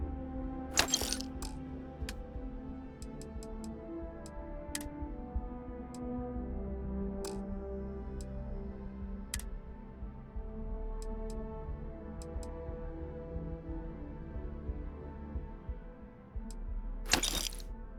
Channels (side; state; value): both; identical; correlation 1.00